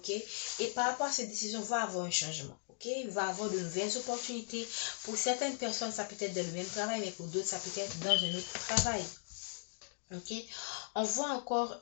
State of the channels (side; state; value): right; silent; digital silence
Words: et par rapport à cette décision va avoir un changement, ok, il va avoir de nouvelles opportunités. Pour certaines personnes ça peut être dans le même travail, mais pour d'autres ça peut être dans un autre travail, ok. On voit encore